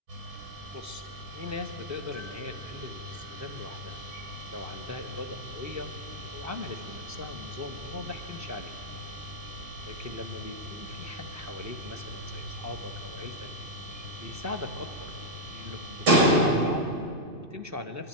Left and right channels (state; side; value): late; left; 2.6 ms